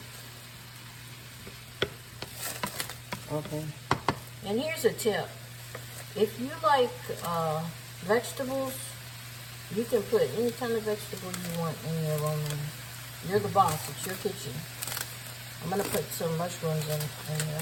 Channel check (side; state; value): both; identical; correlation 1.00